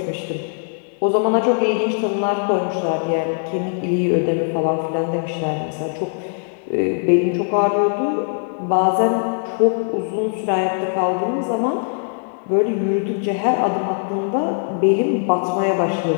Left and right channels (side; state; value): right; silent; 65 dB below the other